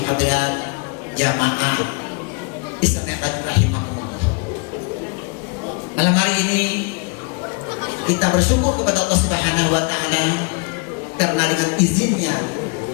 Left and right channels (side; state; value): right; quieter; 33.6 dB